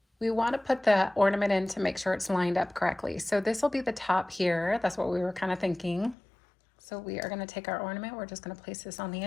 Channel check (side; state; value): right; drops out; at 6.2 s